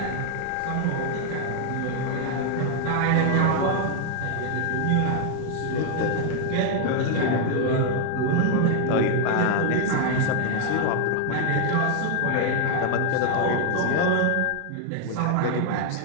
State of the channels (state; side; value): different; both; correlation 0.00